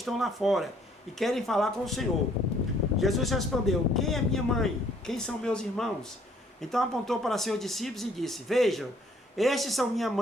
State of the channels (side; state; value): both; normal; correlation 0.62